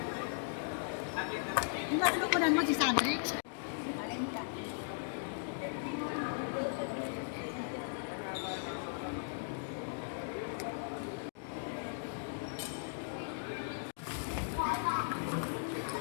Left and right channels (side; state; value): right; silent; digital silence